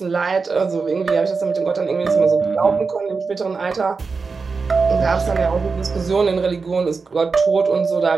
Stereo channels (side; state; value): left; quieter; 4.7 dB